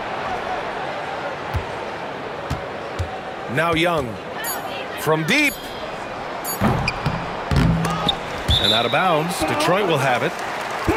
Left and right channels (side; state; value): both; identical; correlation 1.00